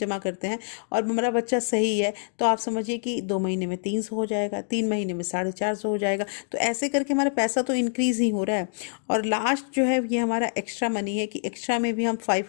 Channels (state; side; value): silent; right; digital silence